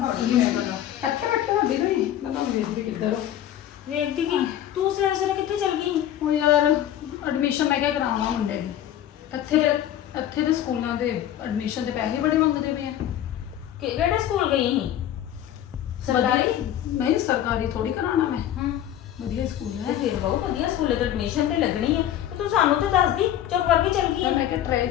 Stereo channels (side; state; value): right; quieter; 11.4 dB